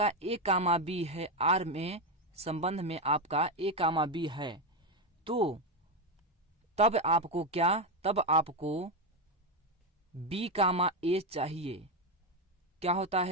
ए कामा बी है आर में संबंध में आपका ए कामा बी है, तो तब आपको क्या? तब आपको बी कामा ए चाहिए। क्या होता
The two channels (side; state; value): both; normal; correlation 0.09